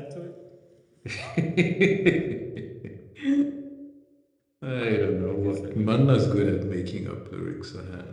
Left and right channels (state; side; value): identical; both; correlation 1.00